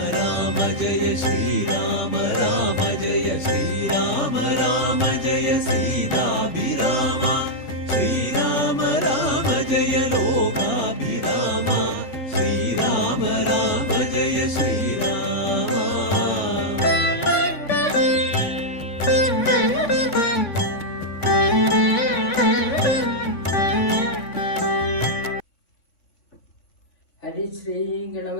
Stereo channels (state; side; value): late; right; 3.5 ms